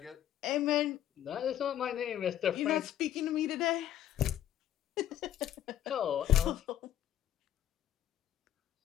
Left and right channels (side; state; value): right; quieter; 11.5 dB